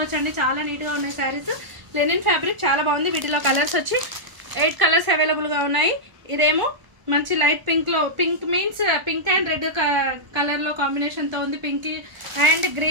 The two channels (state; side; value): late; left; 1.0 ms